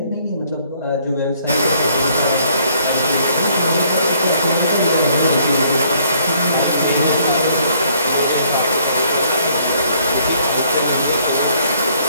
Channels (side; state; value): both; inverted; correlation -0.64